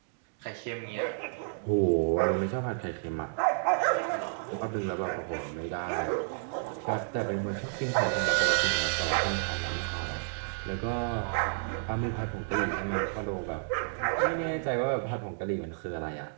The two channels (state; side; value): silent; left; digital silence